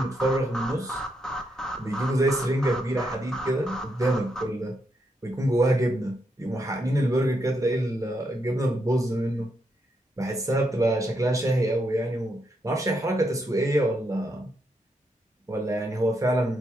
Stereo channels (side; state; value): both; normal; correlation 0.80